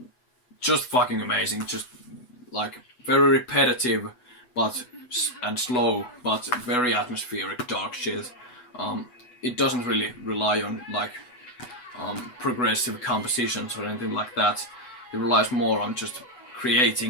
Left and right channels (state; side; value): late; right; 8.1 ms